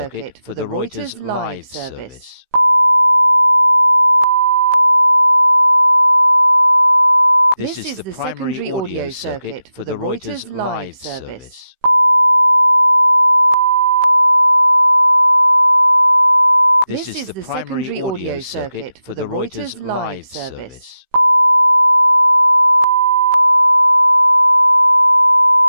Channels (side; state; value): left; late; 16 ms